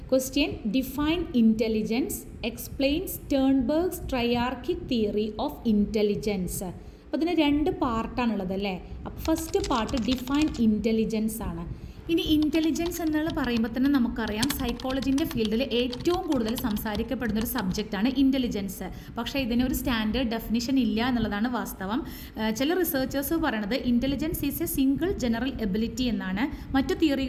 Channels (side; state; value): both; identical; correlation 1.00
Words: Question define intelligence, explain Sternberg's triarchic theory of intelligence. അപ്പോൾ ഇതിന് 2 പാർട്ടാണുള്ളത് അല്ലേ. അപ്പോൾ ഫസ്റ്റ് പാർട്ട് ഡിഫൈൻ ഇൻ്റലിജൻസ് ആണ്. ഇനി ഇൻ്റലിജൻസ് എന്നുള്ള പറയുമ്പോൾ തന്നെ നമുക്കറിയാം സൈക്കോളജിൻ്റെ ഫീൽഡിൽ ഏറ്റവും കൂടുതൽ സംസാരിക്കപ്പെടുന്ന ഒരു സബ്ജക്റ്റാണ് ഇൻ്റലിജൻസ്. പക്ഷേ ഇതിനൊരു സ്റ്റാൻഡേർഡ് ഡെഫിനിഷൻ ഇല്ല എന്നുള്ളതാണ് വാസ്തവം. ചില റിസർച്ചേഴ്സ് പറയണത് intelligence is a single general ability എന്നാണ്. മറ്റു